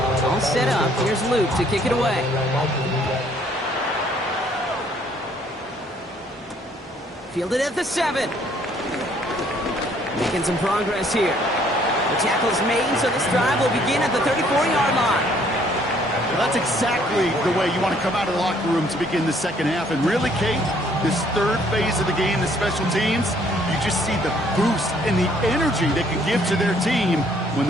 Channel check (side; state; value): both; normal; correlation 0.63